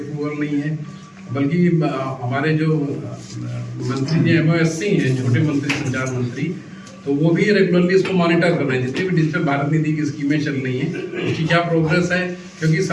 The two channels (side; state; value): both; identical; correlation 1.00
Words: नहीं है, बल्कि हमारे जो मंत्री जी MOSC हैं, छोटे मंत्री, संचार मंत्री, तो वो भी रेगुलरली इसको मॉनिटर कर रहे हैं। जितनी भी डिजिटल भारत निधि की स्कीमें चल रही हैं उसकी क्या प्रोग्रेस है, क्योंकि